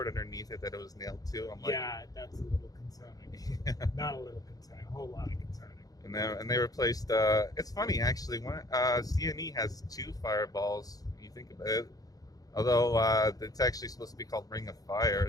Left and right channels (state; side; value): late; right; 0.18 ms